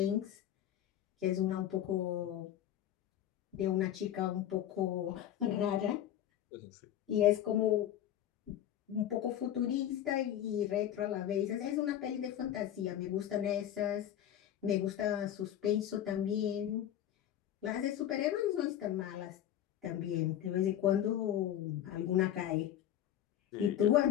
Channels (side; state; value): right; quieter; 11.3 dB